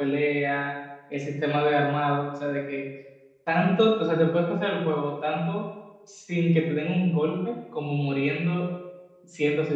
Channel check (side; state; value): both; identical; correlation 1.00